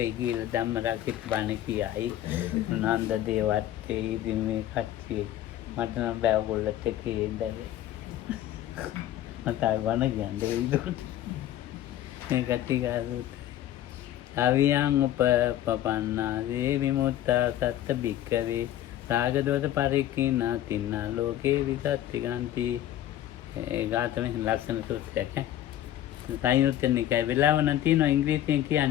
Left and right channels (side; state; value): right; quieter; 12.5 dB